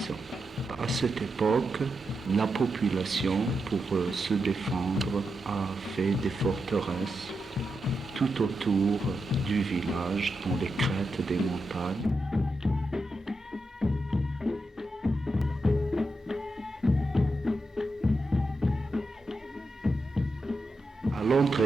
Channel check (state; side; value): normal; both; correlation 0.87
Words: ans. À cette époque, la population, pour se défendre, a fait des forteresses tout autour du village, dans les crêtes des montagnes. À